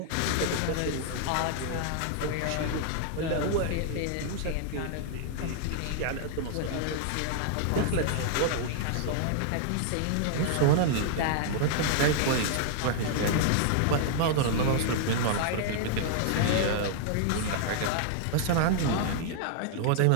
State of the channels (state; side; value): different; both; correlation -0.01